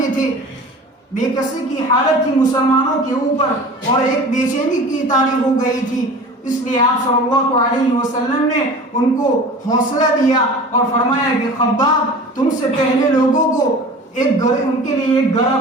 تھے، بے کسی کی حالت تھی مسلمانوں کے اوپر اور ایک بے چینی کی طاری ہو گئی تھی، اس لیے آپ صلی اللہ علیہ وسلم نے ان کو حوصلہ دیا اور فرمایا کہ خباب تم سے پہلے لوگوں کو ان کے لیے ایک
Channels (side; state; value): both; normal; correlation 0.39